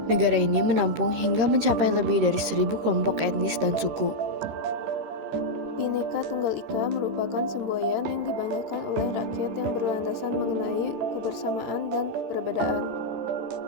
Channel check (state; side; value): late; left; 13 ms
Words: Negara ini menampung hingga mencapai lebih dari 1.000 kelompok etnis dan suku. Bhinneka Tunggal Ika merupakan semboyan yang dibanggakan oleh rakyat yang berlandasan mengenai kebersamaan dan perbedaan.